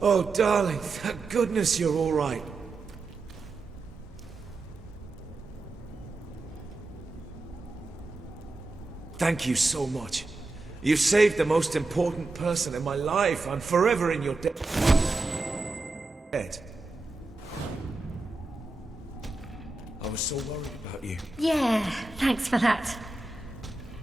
Oh, darling, thank goodness you're all right. Thank you so much. You saved the most important person in my life. I'm forever in your debt. I was so worried about you. Yeah, thanks for that.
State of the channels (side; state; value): left; quieter; 3.3 dB